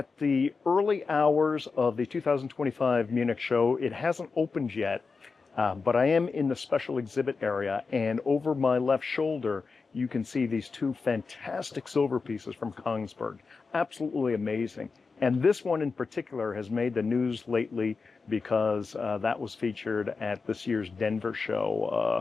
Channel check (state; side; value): quieter; right; 4.6 dB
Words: the early hours of the 2025 Munich show. It hasn't opened yet, but I am in the special exhibit area, and over my left shoulder, you can see these two fantastic silver pieces from Kongsberg. Absolutely amazing. And this one in particular has made the news lately because that was featured at this year's Denver